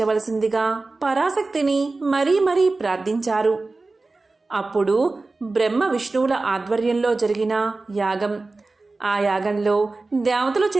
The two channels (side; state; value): left; quieter; 3.5 dB